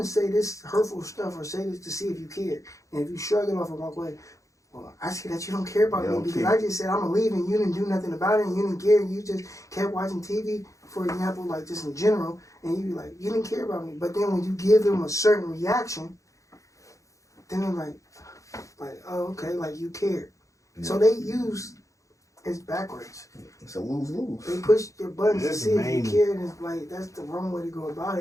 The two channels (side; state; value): right; late; 0.15 ms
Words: say this hurtful stuff or say this to see if you care, and if you shrug it off and walk away, well, I see that you don't care about You me don't because care. I just said I'm gonna leave and you didn't do nothing about it and you didn't care and you just kept watching TV, for example, like just in general, and you be like, you didn't care about me. But then when you give them a certain reaction, then they're like, oh, okay, like you care. So they use it's backwards. It's a lose-lose. They push your buttons to That's see if main. you care, and it's like that's the wrong way to go about